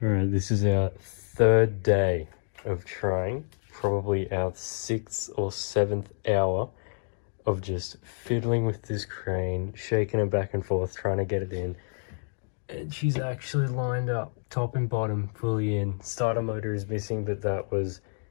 Alright, this is our third day of trying, probably our 6th or 7th hour of just fiddling with this crane, shaking it back and forth, trying to get it in. And she's actually lined up, top and bottom, fully in. Starter motor is missing, but that was,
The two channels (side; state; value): right; silent; digital silence